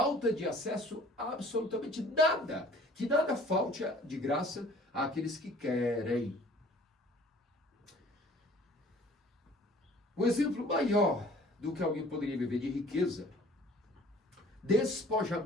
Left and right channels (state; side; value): normal; both; correlation 0.52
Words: de acesso a absolutamente nada. Que nada falte de graça àqueles que querem. O exemplo maior do que alguém poderia viver de riqueza,